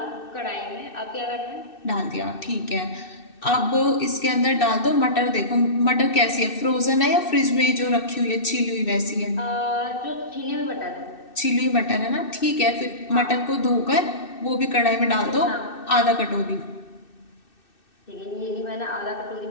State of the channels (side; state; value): right; late; 2.6 ms